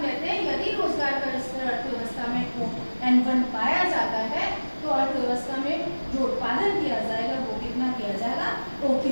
कहते हैं यदि रोजगार का स्तर अर्थव्यवस्था में ON1 पाया जाता है तो अर्थव्यवस्था में जो उत्पादन किया जाएगा वो कितना किया जाएगा?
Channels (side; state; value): both; inverted; correlation -1.00